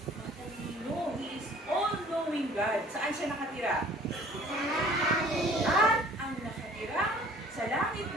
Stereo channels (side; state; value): both; normal; correlation 0.52